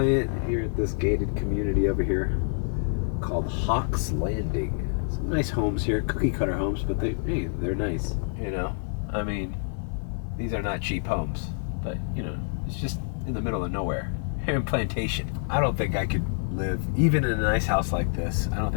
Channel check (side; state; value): right; silent; 55 dB below the other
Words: here at this gated community over here called Hawks Landing. Some nice homes here, cookie cutter homes, but they're nice. You know, I mean, these are not cheap homes, but you know, it's just in the middle of nowhere. Here in Plantation. I don't think I could live, even in a nice house like this, I don't